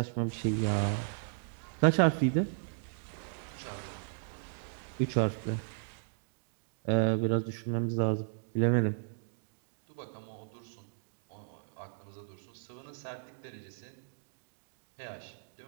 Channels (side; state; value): left; silent; digital silence